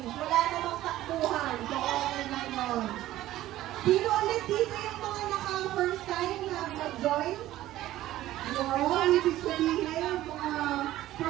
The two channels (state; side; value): quieter; left; 14.7 dB